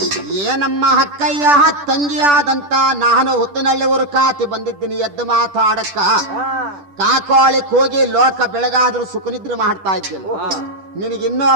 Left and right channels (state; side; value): late; left; 10 ms